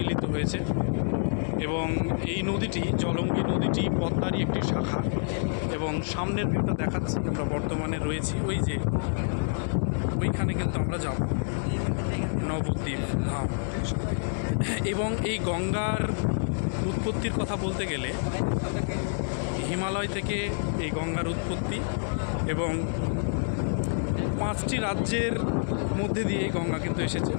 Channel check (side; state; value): right; silent; digital silence